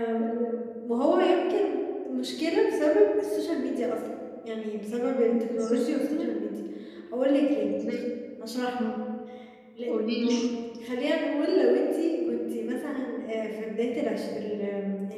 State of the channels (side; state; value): both; identical; correlation 1.00